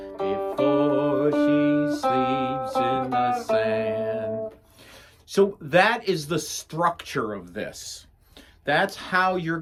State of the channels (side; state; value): both; identical; correlation 1.00